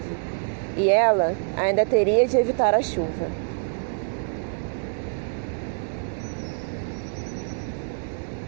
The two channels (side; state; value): left; silent; digital silence